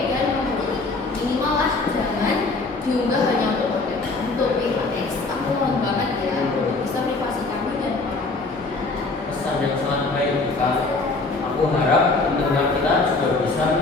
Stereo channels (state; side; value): quieter; right; 3.5 dB